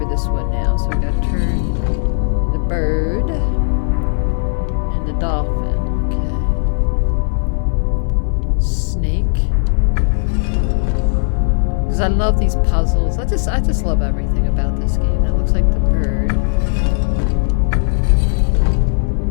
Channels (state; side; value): silent; right; digital silence